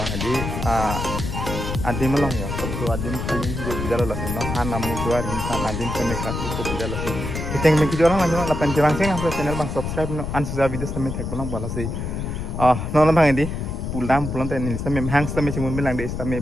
hadi adim lo ya satu adim kali dia tidak lolos no hana musuar insan adim sampai kartu tidak lolos kita yang mengikuti orang lanjut lapan cerangseng apa channel bang subscribe no ansusa video sampai tag pulang balas sih nol bang ini pulang tadi sampai hang sampai cuma bilang deh sampai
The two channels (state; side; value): noise; left; rumble, 4 dB below the sound